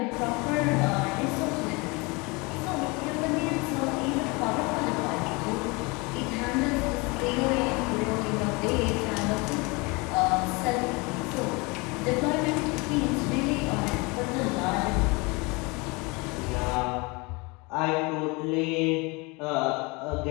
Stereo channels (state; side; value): quieter; right; 27.0 dB